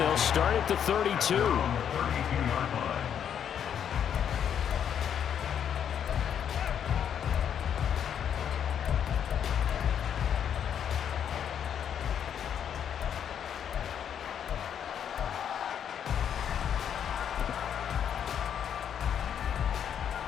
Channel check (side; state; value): right; quieter; 8.7 dB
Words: start at the 32.